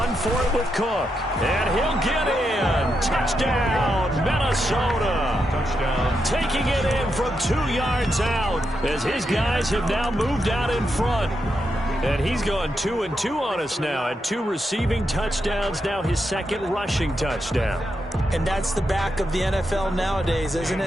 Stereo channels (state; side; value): normal; both; correlation 0.84